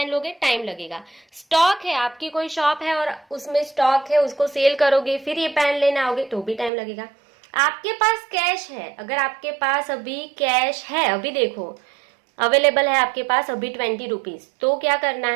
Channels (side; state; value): left; drops out; at 6.7 s